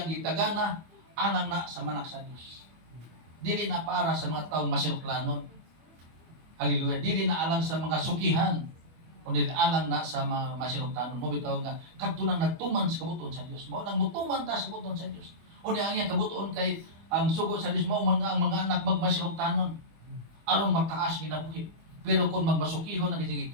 gitagana alang na sa manak sa Dios. Dili na para sa mga taong masinuklanon. Hallelujah. Dili na alang sa mga sukihan, kundi alang na sa mga masinugtanon. Mo bitaw nga kadto nang nagtuman sa kabutuon sa Dios. Mao nang mutuman ta sa kabutuon sa Dios. O ang iyang kabutuon kay ang sugo sa Dios mao man nga ang mga anak magmasinugtanon aron mataas ginabuhi. Pero kung magmasukihon ang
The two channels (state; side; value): late; left; 25 ms